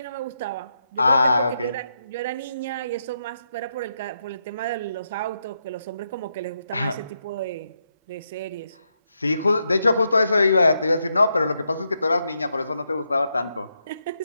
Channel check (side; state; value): both; inverted; correlation -0.82